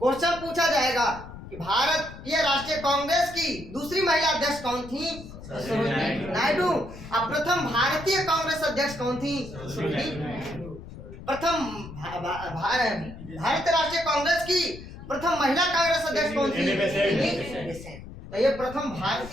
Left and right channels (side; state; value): left; noise; rumble, 14 dB below the sound